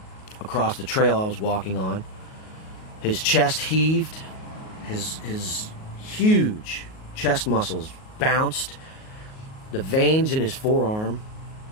across the trail I was walking on. His chest heaved, his huge chest muscles bounced, the veins in his forearm,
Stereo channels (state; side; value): late; right; 38 ms